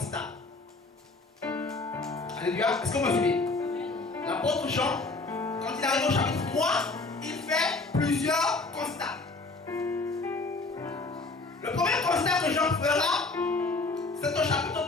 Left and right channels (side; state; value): right; quieter; 3.5 dB